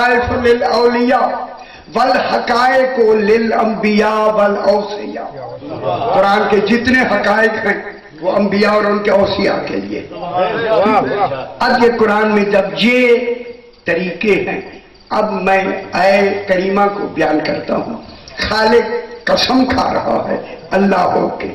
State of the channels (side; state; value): both; identical; correlation 1.00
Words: للاولیاء والحقائق للانبیاء والاوصیاء. قرآن کے جتنے حقائق ہیں وہ انبیاء اور ان کے اوصیاء کے لیے. اب یہ قرآن میں جب یہ طریقے ہیں, اب میں اے کریمہ کو بیان کرتا ہوں. خالق قسم کھا رہا ہے اللہ ہو کے,